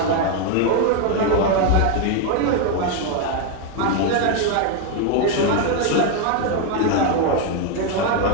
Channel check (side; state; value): both; different; correlation 0.01